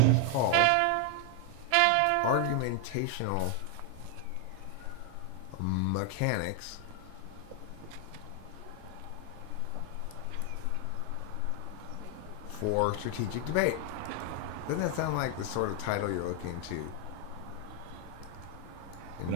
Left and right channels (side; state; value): both; different; correlation 0.00